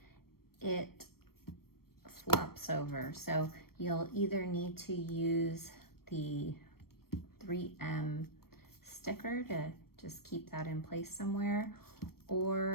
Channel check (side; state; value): right; late; 0.94 ms